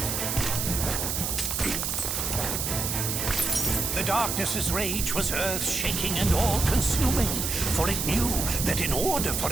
The darkness's rage was earth-shaking and all-consuming, for it knew that in order for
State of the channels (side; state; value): right; noise; hiss, 1 dB below the sound